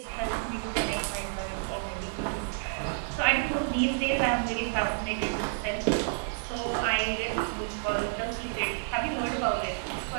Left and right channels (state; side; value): silent; left; digital silence